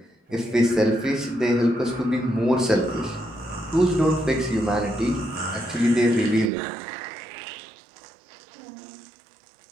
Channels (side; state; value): left; drops out; at 6.5 s